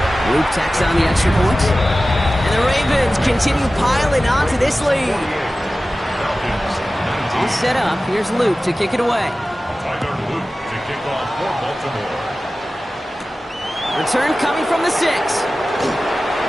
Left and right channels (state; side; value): normal; both; correlation 0.96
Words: Luke tacks on the extra point. And the Ravens continue piling onto this lead. All set up. Here's Luke to kick it away. Tyler Luke to kick off for Baltimore. Return coming from the 6. He